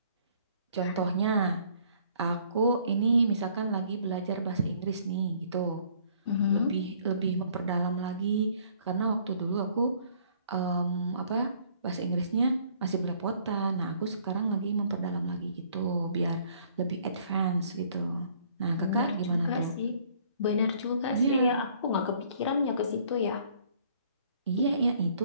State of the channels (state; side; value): inverted; both; correlation -0.60